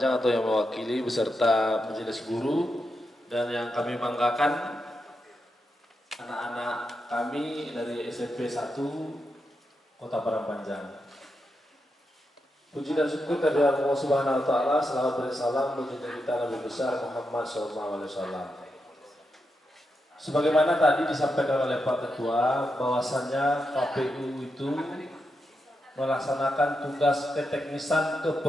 atau yang mewakili beserta majelis guru, dan yang kami banggakan anak-anak kami dari SMP 1 Kota Parahpanjang. Puji dan syukur kepada Allah Subhanahu wa taala, selawat dan salam bagi kita Nabi besar Muhammad SAW. Sebagaimana tadi disampaikan oleh Pak Ketua, bahwasannya KPU itu melaksanakan tugas keteknisan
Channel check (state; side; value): normal; both; correlation 0.86